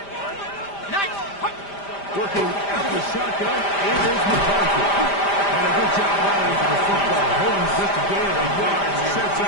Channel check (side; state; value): right; late; 5.0 ms